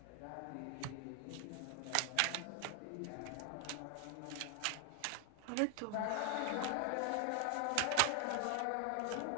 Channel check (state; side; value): different; both; correlation 0.00